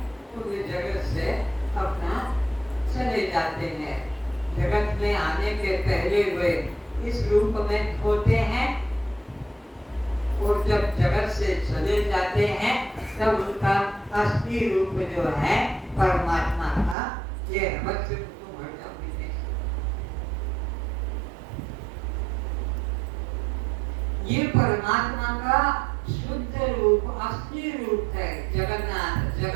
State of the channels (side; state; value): left; drops out; at 16.9 s